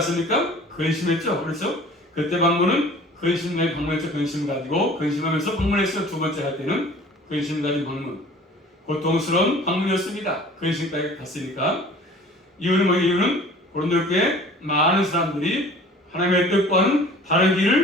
근심했죠. 그렇죠? 그때 방문은 근심에 방문했죠. 근심 가지고 근심하면서 방문했어요. 두 번째 할 때는 근심 가진 방문. 고통스러운 방문이었습니다. 근심까지 갔으니까. 이유는 뭐예요? 이유는 고린도 교회에 많은 사람들이 하나님의 뜻과는 다른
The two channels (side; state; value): both; normal; correlation 0.47